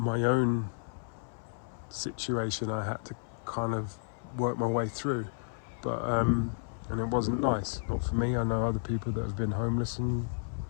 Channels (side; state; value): right; silent; 56 dB below the other